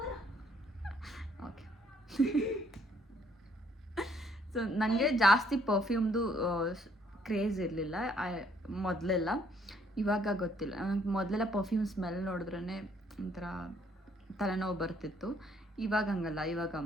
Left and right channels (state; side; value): normal; both; correlation 0.66